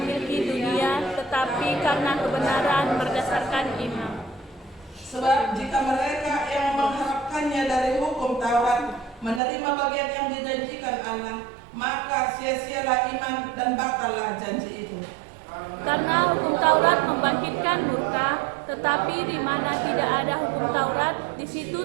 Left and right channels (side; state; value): left; drops out; at 9.4 s